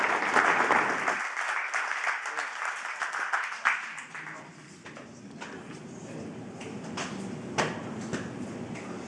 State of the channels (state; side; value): identical; both; correlation 1.00